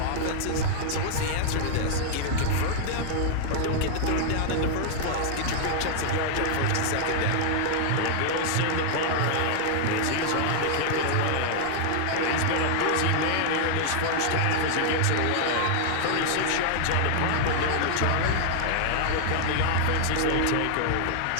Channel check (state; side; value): different; both; correlation 0.00